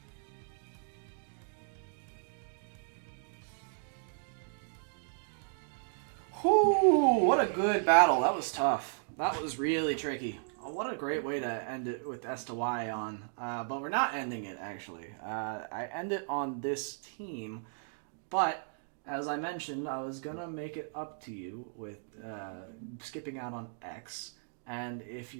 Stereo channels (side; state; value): left; silent; digital silence